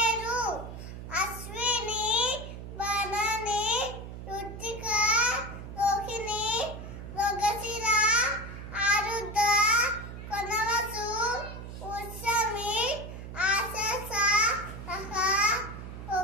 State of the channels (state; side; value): noise; right; hum, 10 dB below the sound